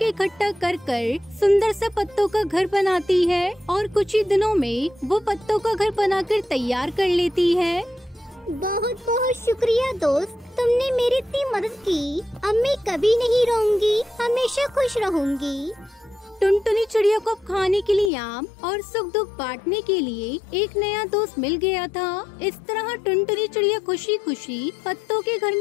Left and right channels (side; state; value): right; drops out; at 18.1 s